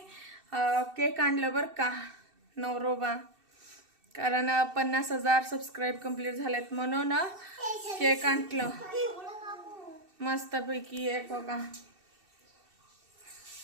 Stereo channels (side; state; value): left; late; 2.7 ms